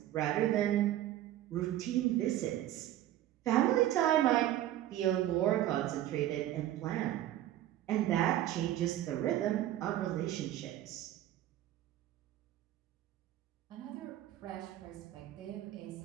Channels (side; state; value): left; quieter; 13.3 dB